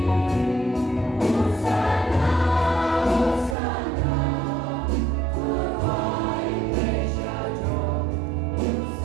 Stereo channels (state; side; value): drops out; left; at 3.6 s